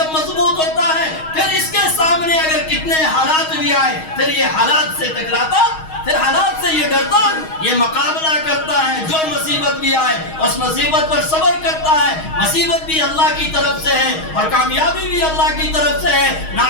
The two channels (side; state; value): right; late; 6.3 ms